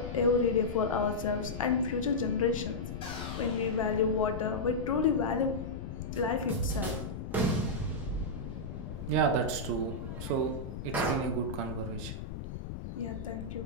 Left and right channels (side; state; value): left; noise; rumble, 8 dB below the sound